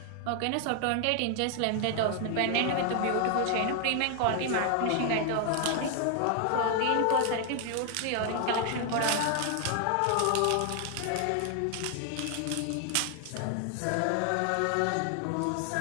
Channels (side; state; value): both; different; correlation 0.00